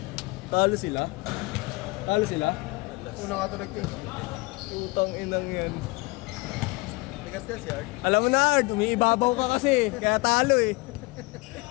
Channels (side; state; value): right; quieter; 24.6 dB